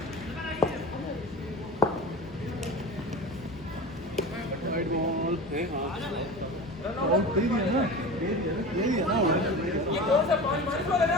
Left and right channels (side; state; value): both; normal; correlation 0.32